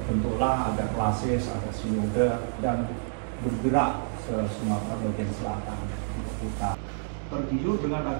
ada klasis, ada sinode dan bergerak ke Sumatera bagian selatan untuk kita tergiur dengan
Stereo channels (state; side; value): silent; left; 59 dB below the other